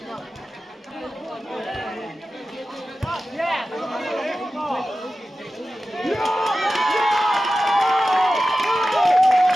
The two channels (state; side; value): normal; both; correlation 0.94